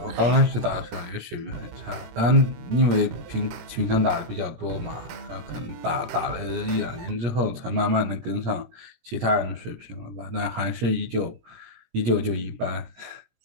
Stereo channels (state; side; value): late; left; 17 ms